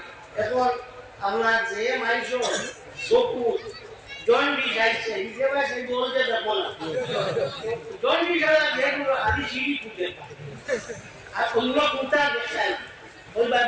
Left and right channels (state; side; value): identical; both; correlation 1.00